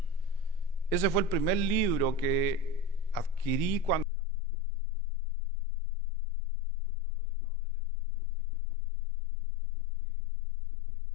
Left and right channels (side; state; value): right; drops out; at 4.0 s